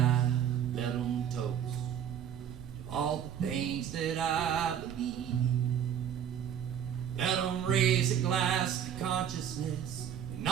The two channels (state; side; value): quieter; left; 9.1 dB